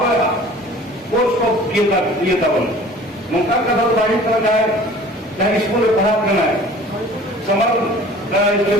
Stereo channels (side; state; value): both; normal; correlation 0.47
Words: कोर्स को किए था मुमता का दल बाहर करना है चाहे स्कूल में पढ़ा करना है summer